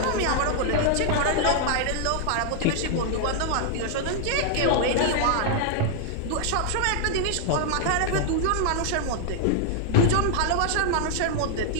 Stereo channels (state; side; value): different; both; correlation 0.00